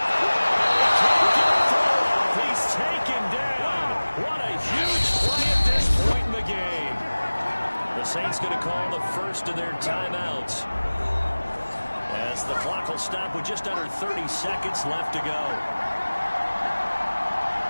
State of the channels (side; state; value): both; inverted; correlation -1.00